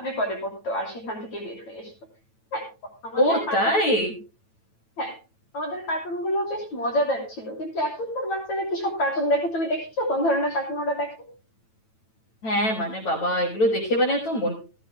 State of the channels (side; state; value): right; late; 9.0 ms